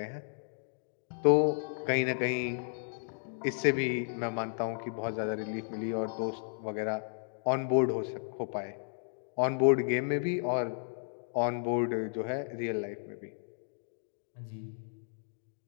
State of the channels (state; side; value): silent; right; digital silence